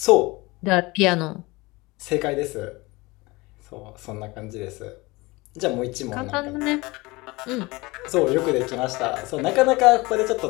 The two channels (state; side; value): quieter; right; 22.9 dB